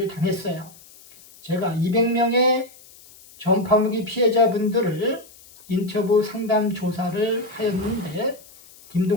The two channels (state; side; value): noise; left; hiss, 23 dB below the sound